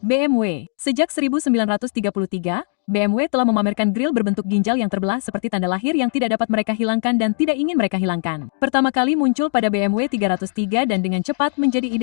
BMW. Sejak 1933, BMW telah memamerkan grill berbentuk ginjal yang terbelah seperti tanda lahir yang tidak dapat mereka hilangkan dan tidak ingin mereka hilangkan. Pertama kali muncul pada BMW 303 dan dengan cepat menjadi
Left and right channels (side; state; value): right; silent; digital silence